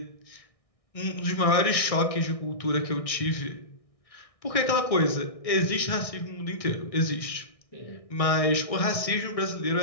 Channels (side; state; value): right; late; 1.6 ms